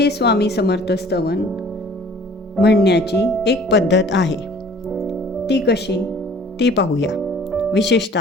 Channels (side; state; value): both; normal; correlation 0.51